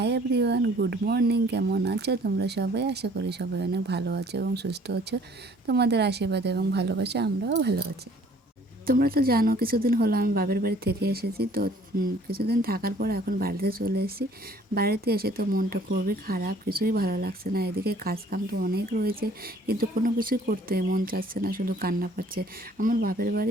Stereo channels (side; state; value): both; normal; correlation 0.56